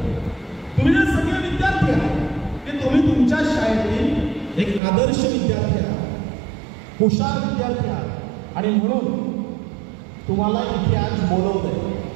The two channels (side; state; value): left; drops out; at 4.8 s